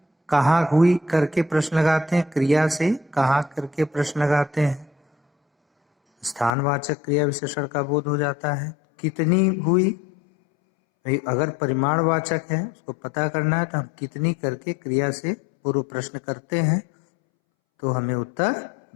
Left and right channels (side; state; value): right; drops out; at 6.5 s